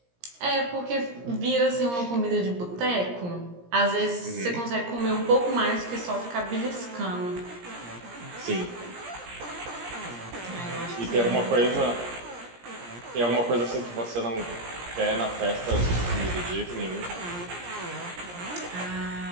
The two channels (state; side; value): late; left; 17 ms